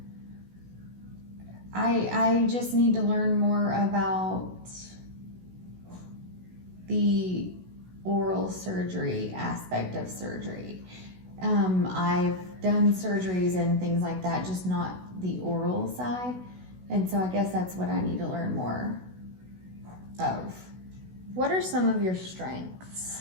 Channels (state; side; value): late; left; 16 ms